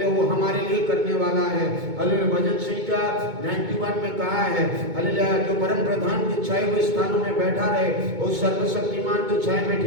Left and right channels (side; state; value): left; late; 2.2 ms